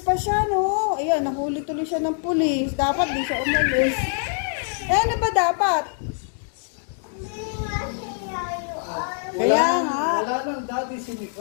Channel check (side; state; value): right; silent; digital silence